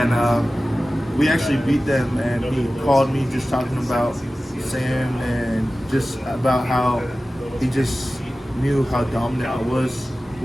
we actually beat them. And he called me just talking about Sam and just about how he just knew how dominant I was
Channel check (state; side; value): normal; both; correlation 0.96